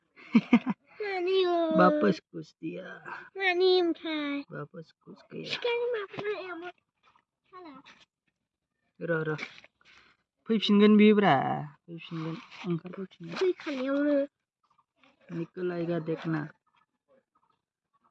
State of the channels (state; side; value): identical; both; correlation 1.00